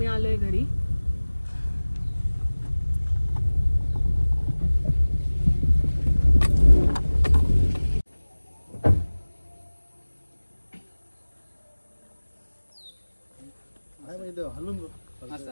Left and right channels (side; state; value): both; inverted; correlation -1.00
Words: आलोय घरी. हलून